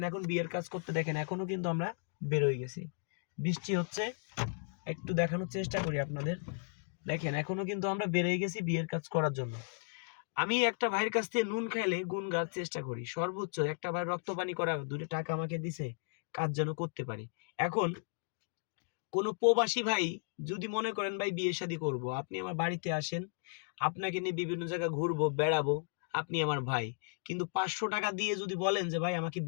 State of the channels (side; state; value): right; silent; digital silence